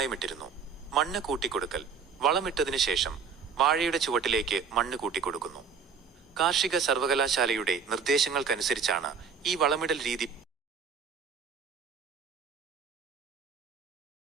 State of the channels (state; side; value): quieter; left; 6.0 dB